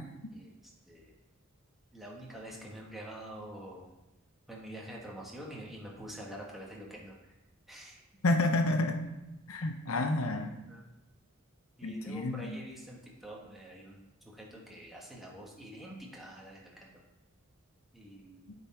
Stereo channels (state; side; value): normal; both; correlation 0.49